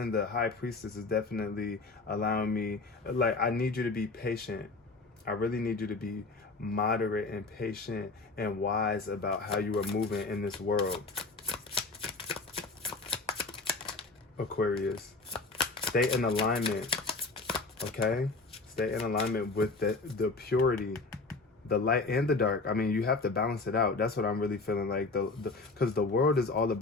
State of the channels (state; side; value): quieter; right; 3.7 dB